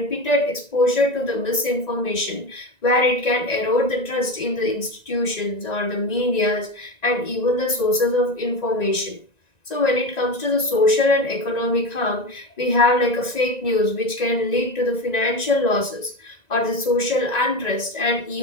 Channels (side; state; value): right; late; 1.9 ms